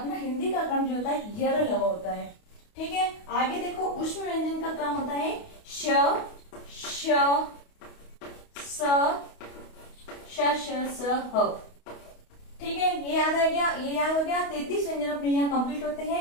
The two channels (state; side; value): late; right; 28 ms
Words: हिंदी का क्रम जो होता है यर ल होता है। ठीक है, आगे देखो उष्म व्यंजन का क्रम होता है श, श, स, श, स, ह। ठीक है, ये याद आ गया, ये याद हो गया। 33 व्यंजन अपने यहाँ कंप्लीट होते